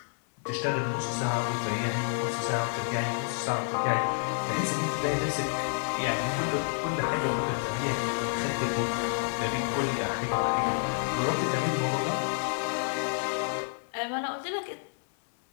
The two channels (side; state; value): right; silent; 58 dB below the other